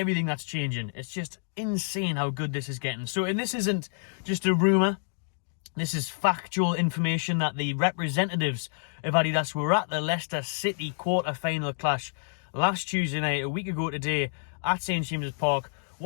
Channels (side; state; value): right; silent; digital silence